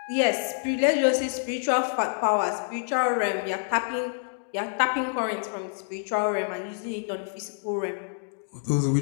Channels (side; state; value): right; silent; digital silence